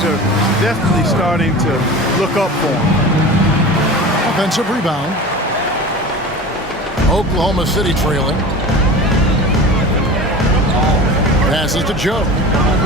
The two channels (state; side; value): normal; both; correlation 0.34